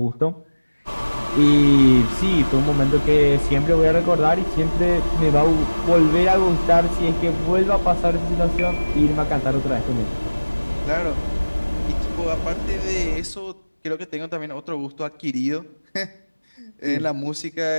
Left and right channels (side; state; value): both; inverted; correlation -1.00